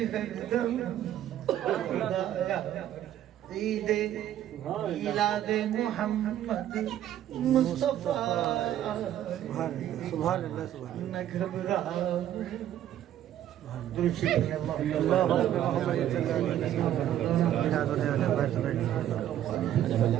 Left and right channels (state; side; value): quieter; left; 11.7 dB